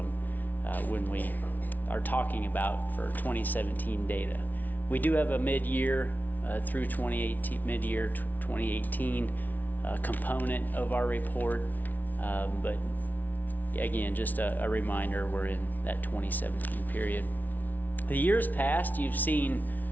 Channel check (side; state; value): right; late; 0.080 ms